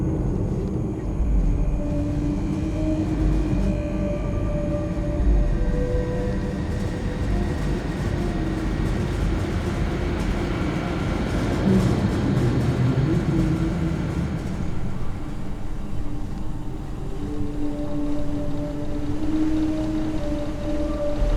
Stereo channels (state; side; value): identical; both; correlation 1.00